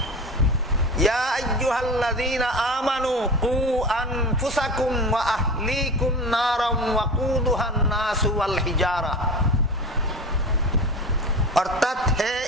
ইয়া আইয়ুহাল্লাযীনা আমানু কু আনফুসাকুম ওয়া আহলিকুম নারাম ওয়াকুদুহান নাসু ওয়াল হিজারা। অর্থাৎ হে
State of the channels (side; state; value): both; normal; correlation 0.31